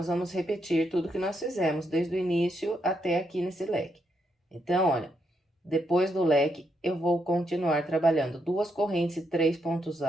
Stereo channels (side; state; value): both; normal; correlation 0.79